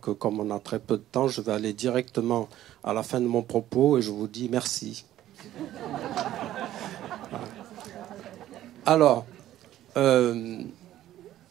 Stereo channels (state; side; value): quieter; left; 13.3 dB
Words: comme on a très peu de temps, je vais aller directement à la fin de mon propos et je vous dis merci. Alors, j'ai